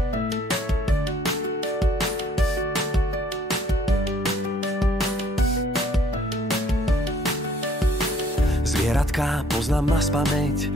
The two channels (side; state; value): both; normal; correlation 0.60